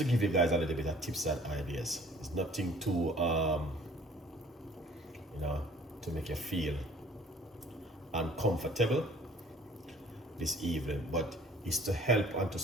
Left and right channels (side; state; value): both; normal; correlation 0.54